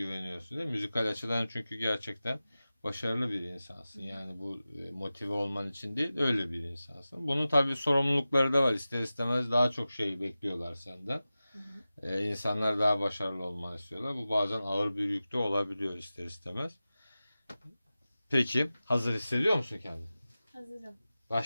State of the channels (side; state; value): both; inverted; correlation -0.95